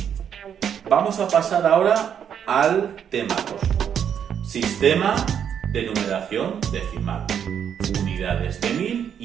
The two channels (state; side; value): quieter; left; 8.4 dB